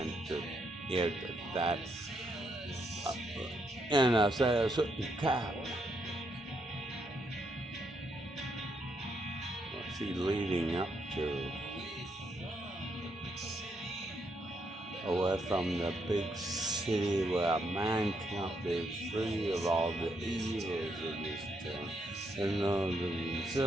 to here to that. And I said a certain cow. What's he leading up to? Away from the big city where a man can't be free of all the evils of this town, and those of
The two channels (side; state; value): both; normal; correlation 0.77